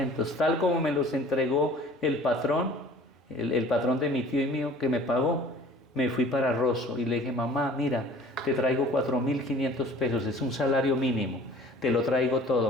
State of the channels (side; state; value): both; normal; correlation 0.48